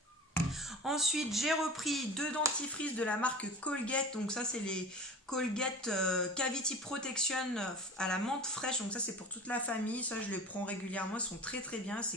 Ensuite, j'ai repris 2 dentifrices de la marque Colgate. Donc ça, c'est les Colgate Cavity Protection à la menthe fraîche. Donc ça, c'est pour toute la famille. Ça, je les prends régulièrement. Ils sont très très bien.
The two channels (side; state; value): both; normal; correlation 0.37